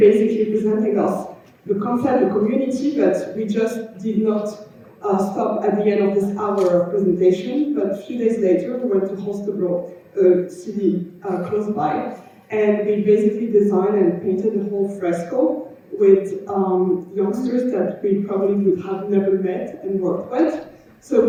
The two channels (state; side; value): identical; both; correlation 1.00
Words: presenting us the concept, the community, but we just did not stop at the end of this hour of presentation. But a few days later, we went to Holstebro, a city close by, and we basically designed and painted the whole fresco with youngsters that we probably would have never met and worked with. So it